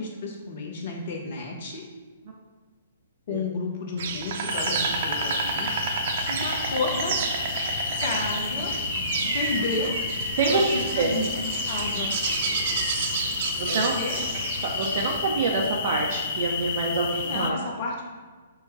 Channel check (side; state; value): both; inverted; correlation -0.46